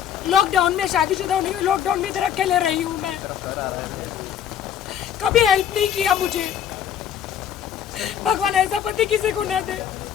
लॉकडाउन में शादीशुदा होने के लॉकडाउन में इधर अकेले रही हूँ मैं, कभी हेल्प नहीं किया मुझे। भगवान ऐसा पति किसी को ना दे,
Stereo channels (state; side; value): quieter; right; 9.4 dB